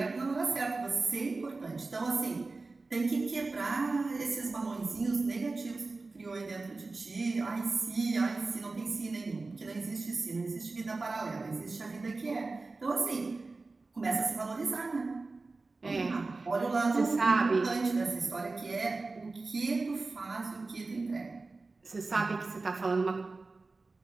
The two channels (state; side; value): quieter; left; 3.6 dB